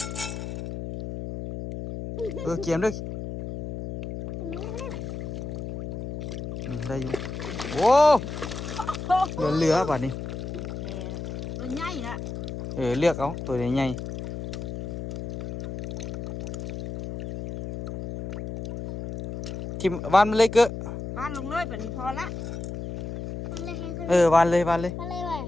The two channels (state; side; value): noise; left; hum, 7 dB below the sound